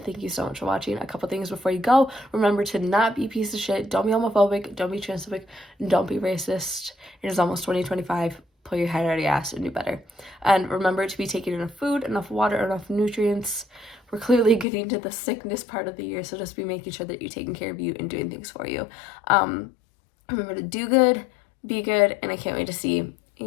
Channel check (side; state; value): right; drops out; at 14.7 s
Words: thank you so much for watching. A couple things before you go. Remember to not be a piece of shit. Don't be homophobic. Don't be transphobic. Don't be racist. It is almost 2025. pull your head out of your ass and do better. And remember to be taking enough food, enough water, enough nutrients. We're clearly getting to the sickness part of the year, so just be making sure that you're taking care of you and doing things for you. Remember to do good, be good, and I can't wait to see